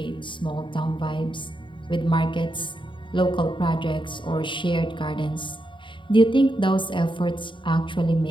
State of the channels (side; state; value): right; late; 0.24 ms